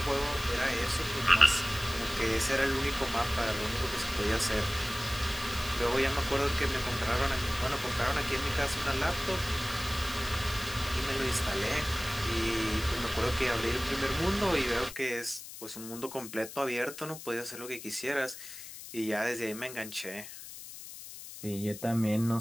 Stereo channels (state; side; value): noise; left; hiss, 13 dB below the sound